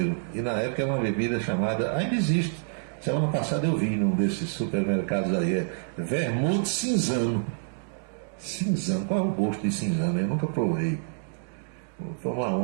E na época era uma bebida chamada, ainda existe. Semana passada eu vi num desses supermercados aí, vermute cinzano. Cinzano, qual é o gosto de cinzano? Eu nunca provei. Vou tomar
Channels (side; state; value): left; silent; digital silence